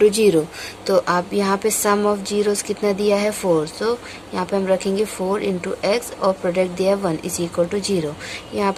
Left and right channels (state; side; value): noise; left; hum, 30 dB below the sound